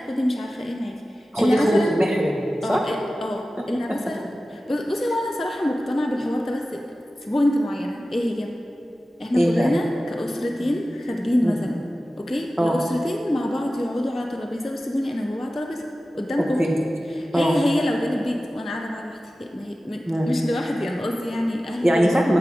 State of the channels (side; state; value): both; normal; correlation 0.95